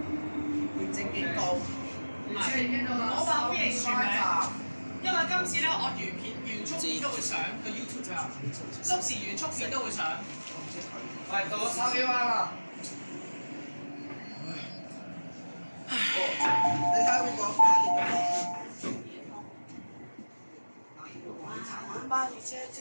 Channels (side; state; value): both; inverted; correlation -1.00